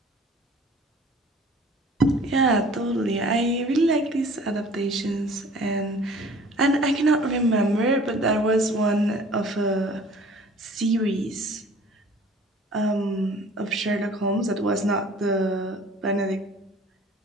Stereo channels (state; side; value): normal; both; correlation 0.49